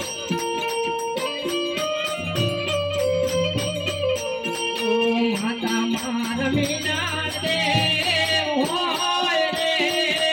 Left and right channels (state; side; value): identical; both; correlation 1.00